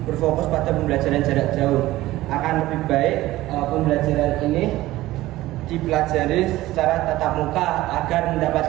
berfokus pada pembelajaran jarak jauh. Akan lebih baik pembelajaran ini dipelajari secara tatap muka agar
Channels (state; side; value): quieter; left; 16.7 dB